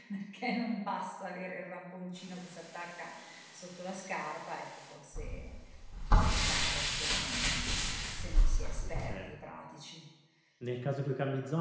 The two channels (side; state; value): both; identical; correlation 1.00